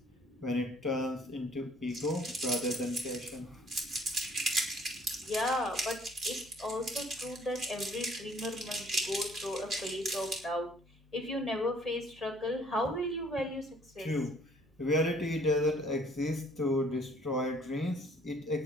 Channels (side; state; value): both; normal; correlation 0.59